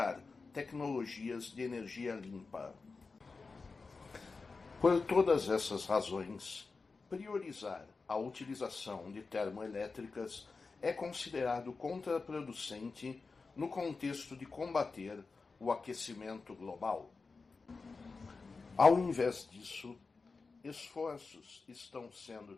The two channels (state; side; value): quieter; right; 4.3 dB